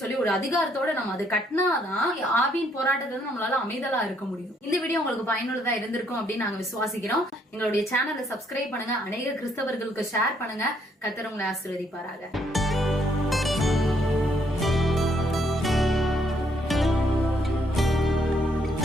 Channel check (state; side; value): normal; both; correlation 0.70